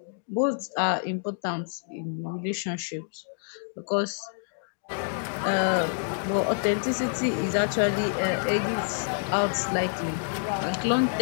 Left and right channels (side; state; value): right; silent; digital silence